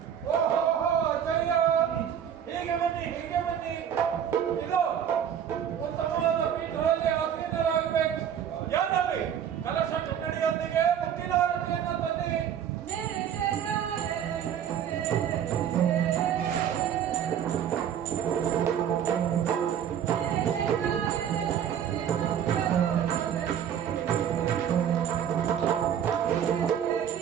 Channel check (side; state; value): left; quieter; 9.1 dB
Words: ಹೀಗೆ ಬನ್ನಿ ಇದು ಉತ್ತಮವಾದ ಪೀಠದಲ್ಲಿ ಆಸೀನರಾಗಬೇಕು. ಯಾರಲ್ಲಿ ಕಲಶ ಕನ್ನಡಿಯೊಂದಿಗೆ ಮುಕ್ತಿದಾರತೆಯನ್ನು ತಂದಿರಿ.